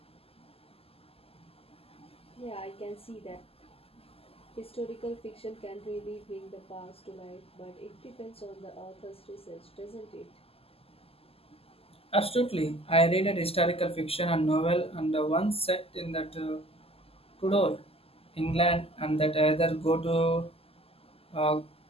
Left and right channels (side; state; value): right; late; 0.28 ms